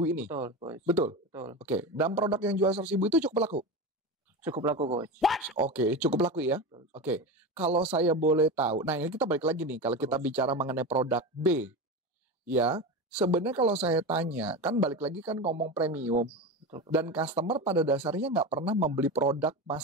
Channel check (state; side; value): normal; both; correlation 0.23